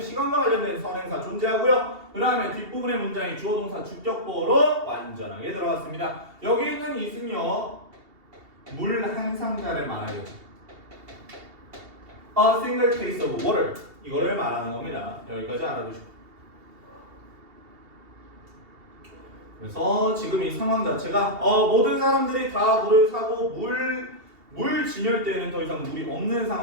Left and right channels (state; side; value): late; left; 2.7 ms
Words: 관련된 선행사 존재하고요. 그 다음에 뒷부분의 문장이 주어동사 주격보로 완전하게 들어갔습니다. 여기 있는 is는요, 물 한 상자를 말하겠죠. A single case of water. 이거를 말하는 겁니다. 여기까지 알아두시고. 그래서 지금 이 상황 자체가 모든 사람들이 다 물을 사고 물 진열대에는 더 이상 물이 없는